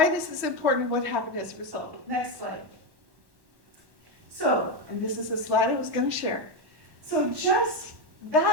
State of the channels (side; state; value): left; late; 1.1 ms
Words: is important and what happened as a result. Next slide. So, and this is a slide I was going to share. So just